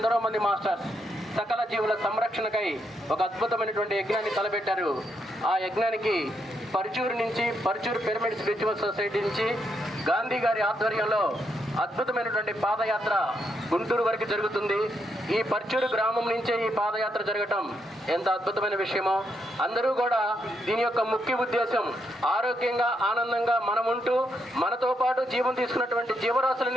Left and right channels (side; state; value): both; normal; correlation 0.79